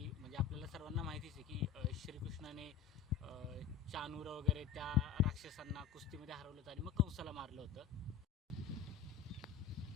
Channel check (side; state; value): right; quieter; 8.8 dB